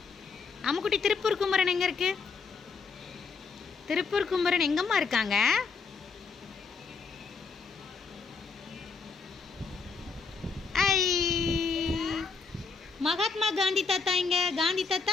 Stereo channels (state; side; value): quieter; right; 5.0 dB